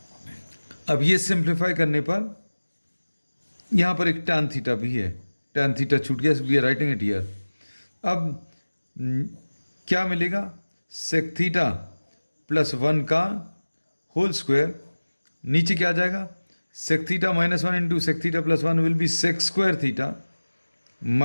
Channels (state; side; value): inverted; both; correlation -1.00